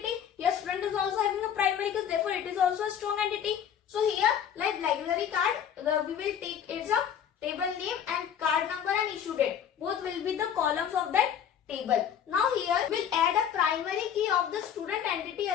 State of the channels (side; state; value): right; quieter; 8.8 dB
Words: Here student is also having a primary key, therefore it is also a strong entity. So here, like library card, we will take card number and issue date. Both will be the columns of that table. Now here we'll add a primary key of the student entity